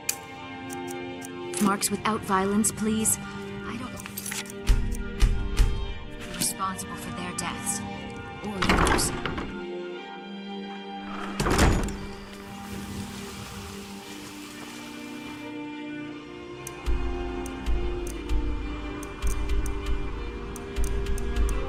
Marks without violence, please. I don't want... be responsible for their deaths. Or yours.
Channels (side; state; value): both; identical; correlation 1.00